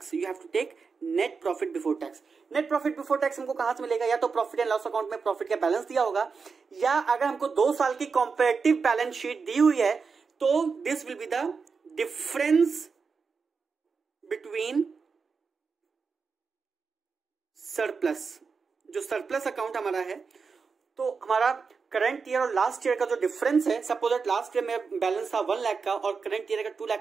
You have to take net profit before tax. Net profit before tax हमको कहां से मिलेगा, या तो प्रॉफिट एंड लॉस अकाउंट में प्रॉफिट का बैलेंस दिया होगा, या अगर हमको 2 साल की कंपैरेटिव बैलेंस शीट दी हुई है तो this will be the difference between surplus. जो सरप्लस अकाउंट हमारा है, तो हमारा करंट ईयर और लास्ट ईयर का जो डिफरेंस है, सपोज दैट लास्ट ईयर में बैलेंस था 1 लाख का और करंट ईयर का 2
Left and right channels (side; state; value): left; quieter; 5.2 dB